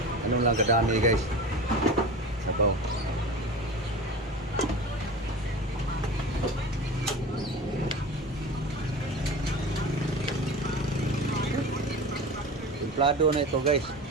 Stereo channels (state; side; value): normal; both; correlation 0.33